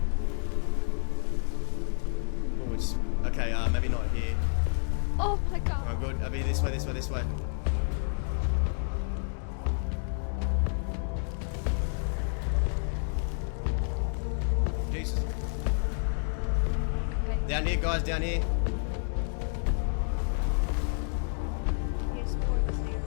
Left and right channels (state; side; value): silent; right; 56 dB below the other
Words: Oh, it's okay. Maybe not here. Oh my god. Oh, good. I'll be this way. Jesus. Okay. Down here, guys. Down here. Yes.